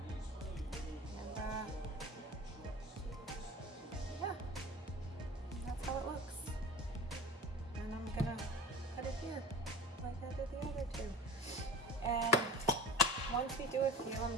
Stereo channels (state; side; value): normal; both; correlation 0.38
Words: And yeah, that's how it looks. And I'm gonna put it here, like I did the other 2. And Once we do a few, I'm